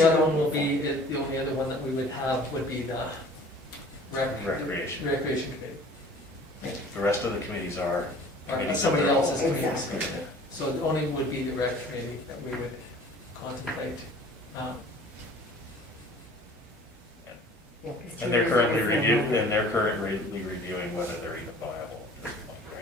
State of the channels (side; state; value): both; normal; correlation 0.48